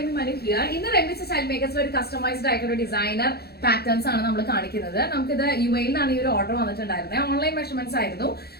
Manu here. In the Remy Style Makers ഒരു customised ആയിട്ടുള്ള designer patterns ആണ് നമ്മൾ കാണിക്കുന്നത്. നമുക്കിത് UAE ലാണ് ഈ ഒരു ഓർഡർ വന്നിട്ടുണ്ടായിരുന്നത്. ഓൺലൈൻ മെഷർമെന്റ്സ് ആയിരുന്നു.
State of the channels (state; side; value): late; right; 0.46 ms